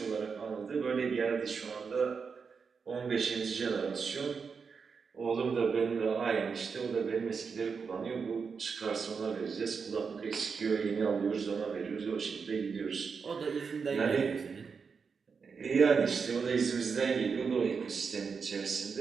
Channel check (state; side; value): quieter; left; 5.6 dB